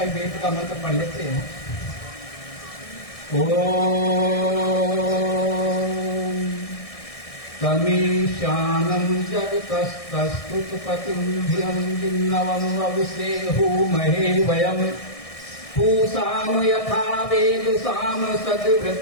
वेद का मंत्र पढ़ लेते हैं। ओम तमीशानं जगतस्तस्तुतपतिं धियं जिन्नवं वविसेहुमहे वयं पूषाम यथा वेदसाम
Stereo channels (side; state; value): right; late; 1.6 ms